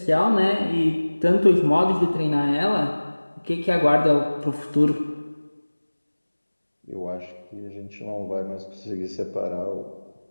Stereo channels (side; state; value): both; inverted; correlation -1.00